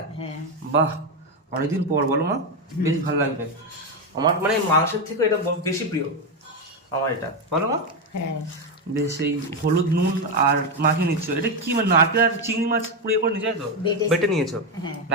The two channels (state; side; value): normal; both; correlation 0.08